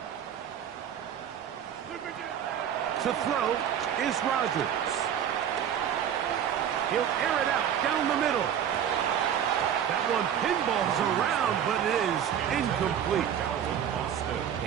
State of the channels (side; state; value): left; quieter; 9.2 dB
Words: To throw is Rodgers. He'll air it out down the middle. That one pinballs around, but it is incomplete.